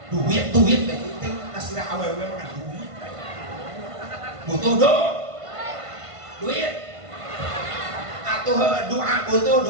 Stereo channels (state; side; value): late; left; 1.5 ms